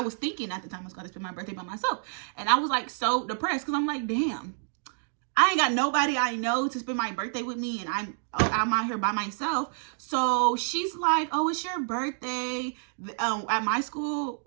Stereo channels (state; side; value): silent; left; digital silence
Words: thinking at the time I was going to spend my birthday by myself, and I was like so depressed, because I'm like, damn, I ain't got nobody I know to spend my birthday with me, and I'm out here by myself. So she's like, oh, it's your birthday. At my school,